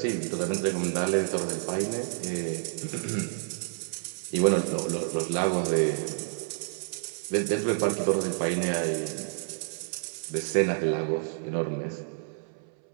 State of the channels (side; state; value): left; silent; 58 dB below the other